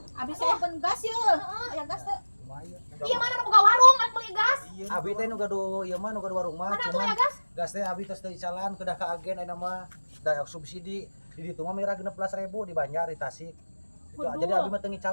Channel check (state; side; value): inverted; both; correlation -1.00